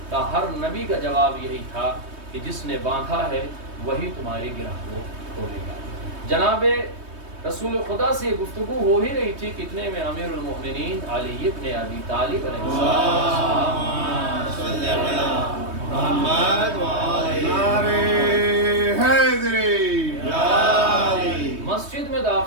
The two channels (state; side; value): late; left; 3.2 ms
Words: کہا ہر نبی کا جواب یہی تھا کہ جس نے باندھا ہے وہی تمہاری گرہ کو کھولے گا۔ جناب رسول خدا سے گفتگو ہو ہی رہی تھی، کتنے میں امیر المؤمنین علی ابن ابی طالب علیہ السلام مسجد میں